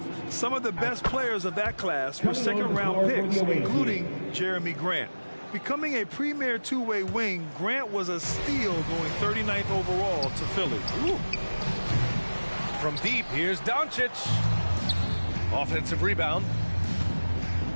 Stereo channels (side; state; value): both; inverted; correlation -1.00